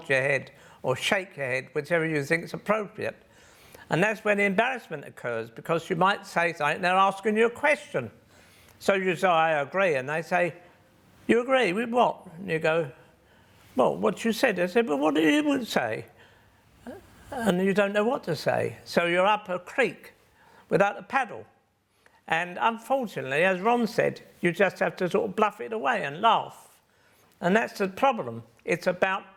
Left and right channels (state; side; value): identical; both; correlation 1.00